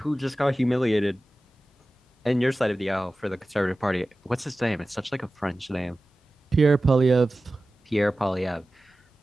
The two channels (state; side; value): normal; both; correlation 0.96